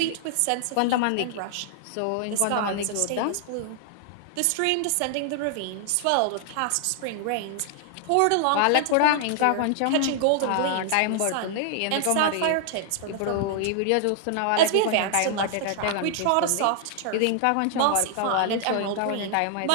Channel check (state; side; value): different; both; correlation 0.00